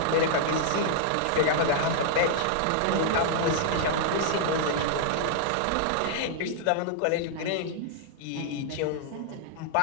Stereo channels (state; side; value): different; both; correlation -0.01